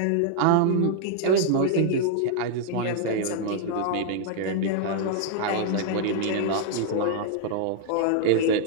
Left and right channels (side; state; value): both; different; correlation -0.01